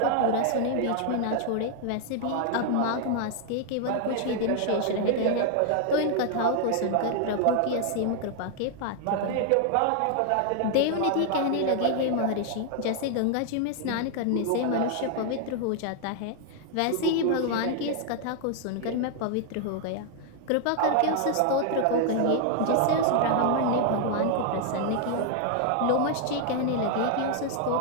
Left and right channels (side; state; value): both; different; correlation 0.00